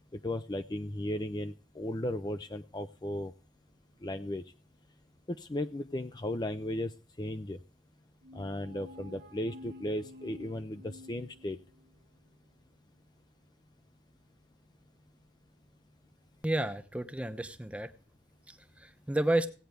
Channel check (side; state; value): both; normal; correlation 0.80